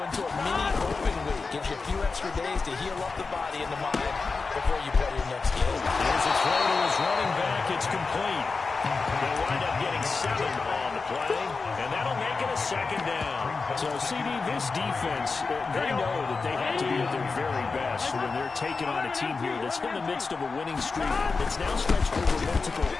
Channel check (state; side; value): quieter; right; 4.3 dB